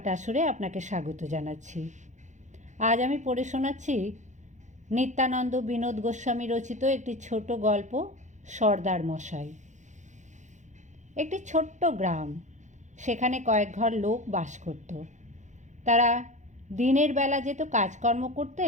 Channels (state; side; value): late; left; 0.35 ms